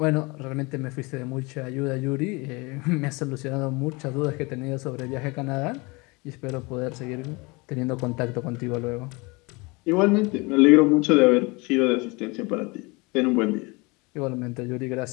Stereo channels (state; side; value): quieter; right; 26.4 dB